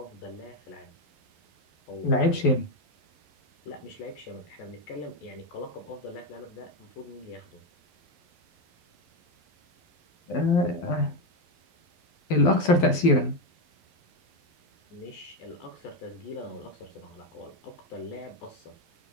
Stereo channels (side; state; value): right; late; 12 ms